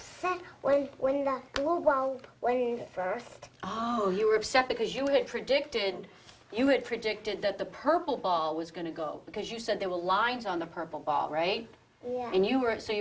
when the blue ball went in first. Oh, you were upset because you had predicted that the purple ball was going to go because you said there were lines on the purple ball, right? Yeah. And you were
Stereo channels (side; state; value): both; identical; correlation 1.00